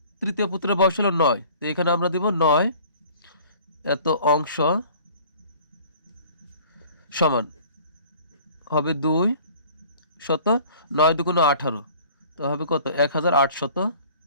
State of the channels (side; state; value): both; inverted; correlation -0.50